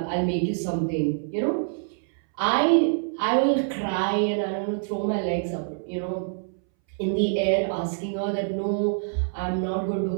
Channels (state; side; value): silent; left; 61 dB below the other